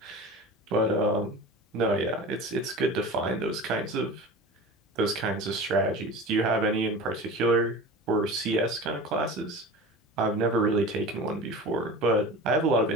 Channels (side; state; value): both; normal; correlation 0.34